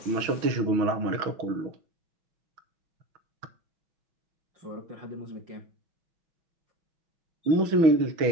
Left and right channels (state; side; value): late; left; 6.2 ms